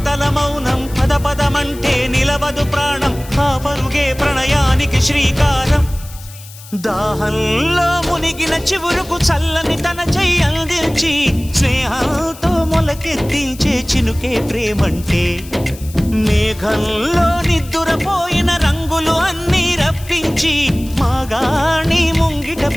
మౌనం పద పదమంటే నిలవదు ప్రాణం ఆ పరుగే ప్రణయానికి శ్రీకారం దాహంలో మునిగిన చివురుకు చల్లని తన చెయ్యి అందించి స్నేహంతో మొలకెత్తించే చినుకే ప్రేమంటే మేఘంలో నిద్దురపోయిన రంగులు అన్నీ రప్పించి మాగాణి ముంగిట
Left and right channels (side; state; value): left; noise; hiss, 18 dB below the sound